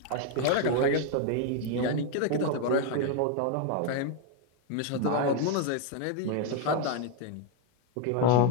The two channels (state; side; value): different; both; correlation 0.01